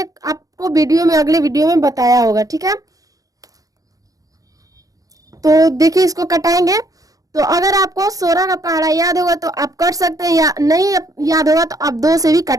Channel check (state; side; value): late; left; 0.17 ms